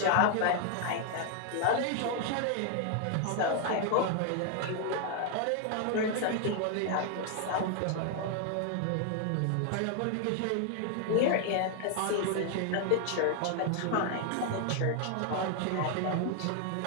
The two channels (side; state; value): both; different; correlation 0.00